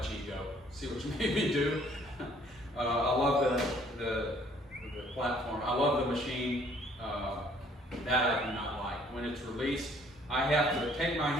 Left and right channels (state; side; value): normal; both; correlation 0.60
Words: Ego. See what you made me do. I love the platform. I love the machine. That I do not like. When it's released, I have to take my